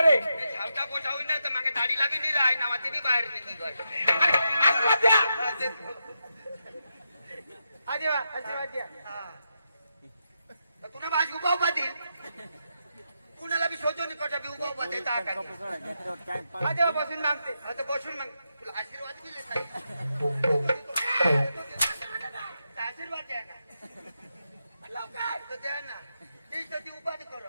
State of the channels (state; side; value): inverted; both; correlation -0.85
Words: रे धावता पोटा होईल ना तर मागे दाढी लागली नाही आहे नावाची बी बाहेर निघी तुला माझी उभा उभा देईल कुणाला बी शोधून कटा बी उभा उभा देता बसून मागते आता बसून माग तुला आशीर्वाद दिले आशीर्वाद द्या ना लवकर द्या ना ती उभा